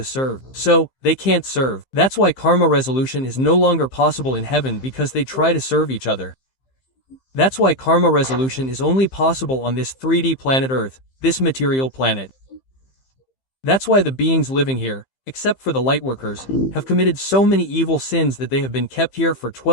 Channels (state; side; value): late; right; 15 ms